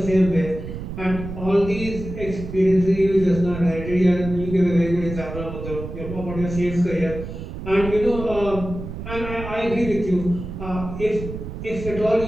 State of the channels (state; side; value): noise; right; rumble, 9 dB below the sound